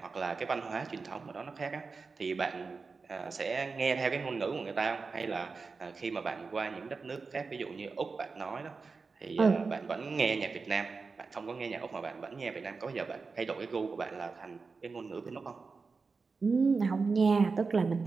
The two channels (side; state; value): left; quieter; 4.5 dB